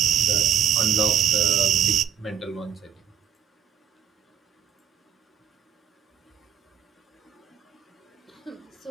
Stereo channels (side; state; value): left; quieter; 8.3 dB